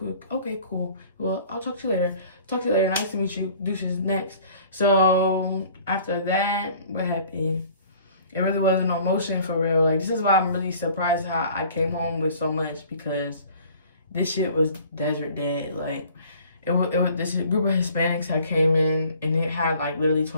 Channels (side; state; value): both; inverted; correlation -0.51